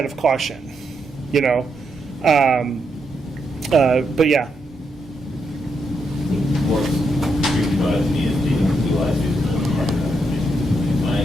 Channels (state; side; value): normal; both; correlation 0.80